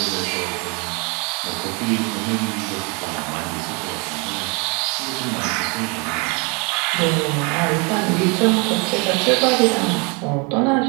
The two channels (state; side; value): quieter; left; 31.4 dB